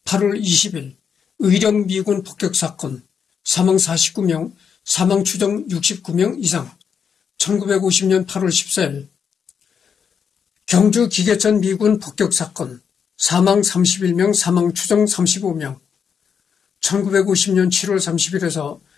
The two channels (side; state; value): right; quieter; 7.0 dB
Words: 8월 20일 의령 미군 폭격사건 사망 49명, 사망 추정 69명 이상. 1950년 8월 14일 경주 기계천 미군 폭격사건 사망 31명, 사망 추정 35명. 1950년 7월 30일에서